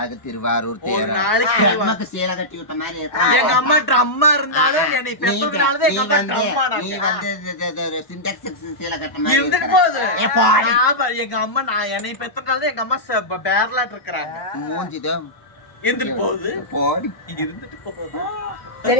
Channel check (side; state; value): right; late; 1.1 ms